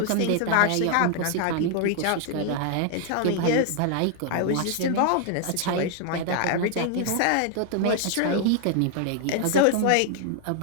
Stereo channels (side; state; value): both; different; correlation 0.00